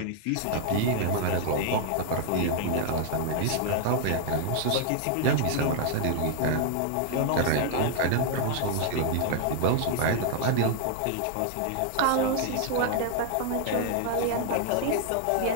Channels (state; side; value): different; both; correlation 0.00